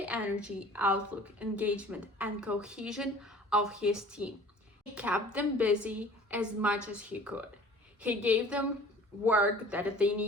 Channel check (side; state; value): both; normal; correlation 0.48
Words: energy, outlook, engagement, and cohesion of his team. He kept them busy as much as he could. He gave them work that they